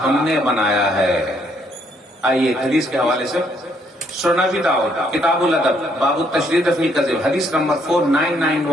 हमने बनाया है। आइए हदीस के हवाले से सुना भी दाऊद किताबुल अदब बाबू तशरीद फिल कज़िब हदीस नंबर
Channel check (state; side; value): normal; both; correlation 0.70